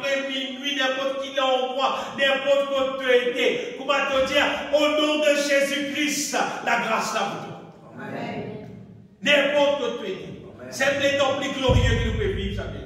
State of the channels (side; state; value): both; identical; correlation 1.00